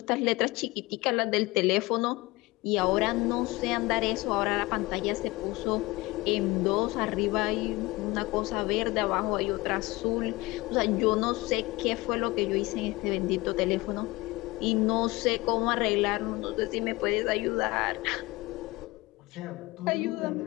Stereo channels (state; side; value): quieter; right; 21.7 dB